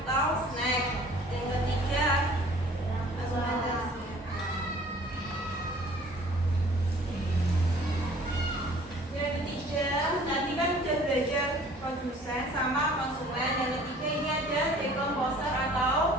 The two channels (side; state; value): both; normal; correlation 0.51